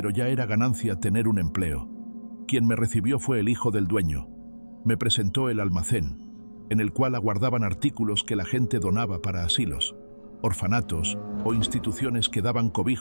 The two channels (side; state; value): both; inverted; correlation -1.00